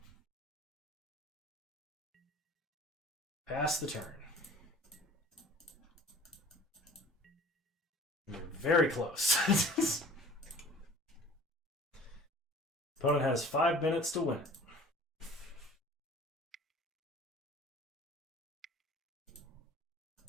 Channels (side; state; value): both; normal; correlation 0.47